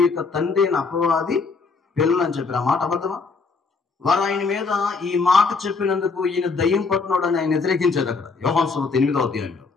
యొక్క తండ్రి అయిన అపవాది పిల్లలు అని చెప్పారు. ఆ మాట అబద్ధమా? వారు ఆయన మీద ఈ మాట చెప్పినందుకు ఈయన దయ్యం పట్టినోడు అని ఆయన వ్యతిరేకించారు. అక్కడ యోహాను సువార్త 8వ అధ్యాయంలో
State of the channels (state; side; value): quieter; right; 4.5 dB